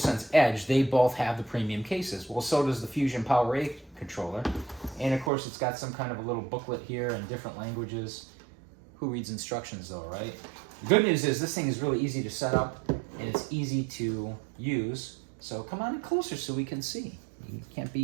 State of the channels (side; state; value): left; drops out; at 5.3 s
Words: Edge, they both have the premium cases. Well, so does the Fusion PowerA controller. And of course, it's got some kind of a little booklet here in different languages. Who reads instructions though, right? The good news is this thing is really easy to set up and it's easy to use. So come on in closer so we can see. You can't